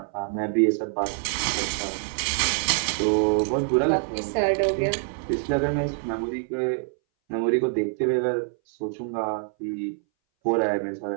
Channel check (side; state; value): left; silent; 60 dB below the other